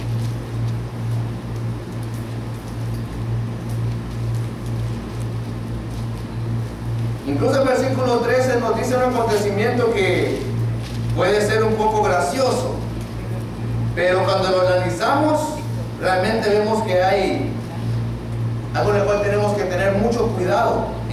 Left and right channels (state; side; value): identical; both; correlation 1.00